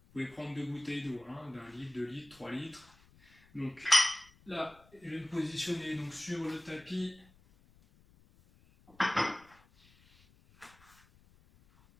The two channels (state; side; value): noise; left; rumble, 28 dB below the sound